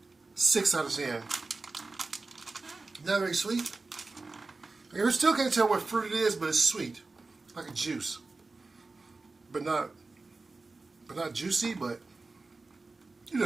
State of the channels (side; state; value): left; quieter; 3.6 dB